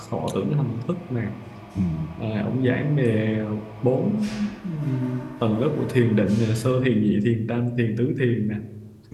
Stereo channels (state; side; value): identical; both; correlation 1.00